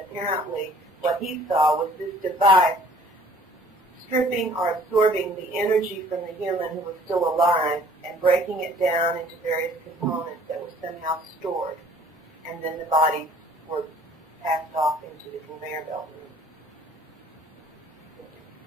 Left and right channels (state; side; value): normal; both; correlation 0.54